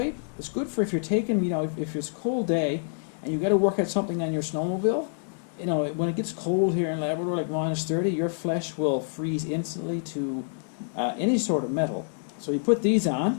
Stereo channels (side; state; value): right; silent; digital silence